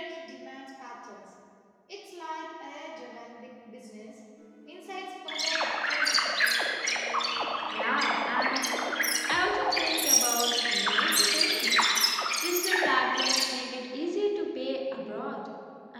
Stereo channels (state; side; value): identical; both; correlation 1.00